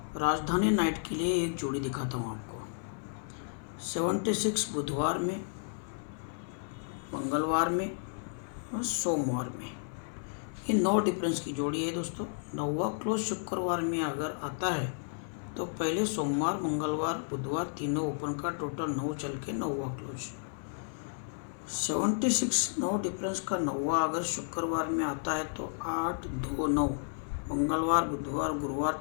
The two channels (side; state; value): right; silent; 56 dB below the other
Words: राजधानी नाइट के लिए एक जोड़ी दिखाता हूँ आपको। 76 बुधवार में, मंगलवार में और सोमवार में, ये 9 डिफरेंस की जोड़ी है दोस्तों। 9वां क्लोज शुक्रवार में अगर आता है तो पहले सोमवार, मंगलवार, बुधवार तीनों ओपन का टोटल 9 चल के 9वां क्लोज। 76 9 डिफरेंस का 9वां अगर शुक्रवार में आता है तो 8 2 9, मंगलवार, बुधवार,